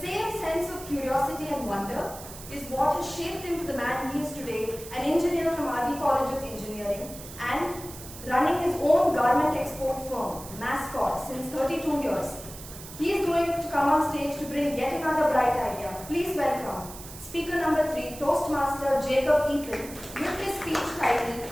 same sense of curiosity and wonder is what has shaped him to the man he is today, an engineer from RV College of Engineering and running his own garment export firm, Mascot, since 32 years. He is going to come on stage to bring yet another bright idea. Please welcome speaker number 3, Toastmaster Jacob Eapen, with his speech titled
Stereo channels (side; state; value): right; noise; hiss, 14 dB below the sound